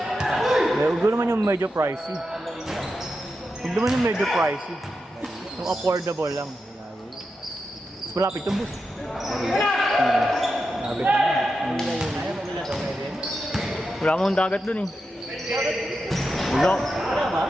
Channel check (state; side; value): normal; both; correlation 0.88